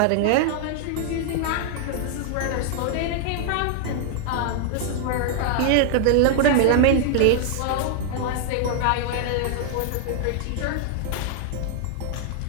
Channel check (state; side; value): different; both; correlation -0.01